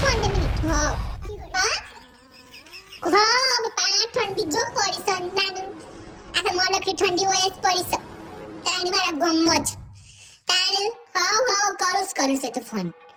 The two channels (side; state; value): both; identical; correlation 1.00